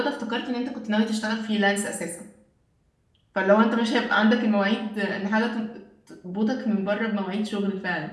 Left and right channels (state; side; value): identical; both; correlation 1.00